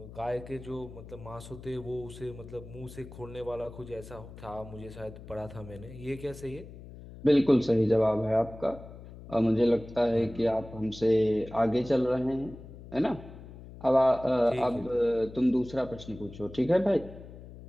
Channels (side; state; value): left; noise; hum, 16 dB below the sound